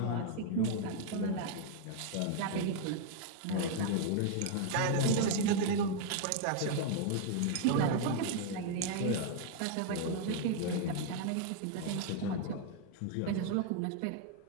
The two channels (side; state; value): both; different; correlation 0.00